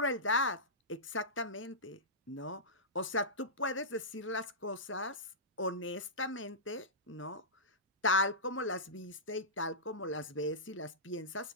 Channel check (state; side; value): normal; both; correlation -0.16